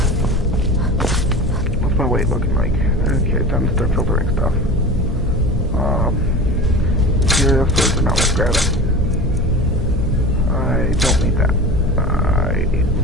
What's my weight looking like? Okay, time to start filtering stuff. Material swords are not worth grabbing. I don't need that. I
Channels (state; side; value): normal; both; correlation 0.34